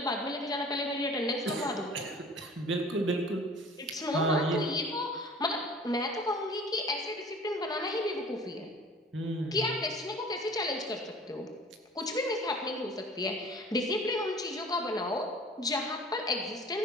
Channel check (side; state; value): both; normal; correlation 0.46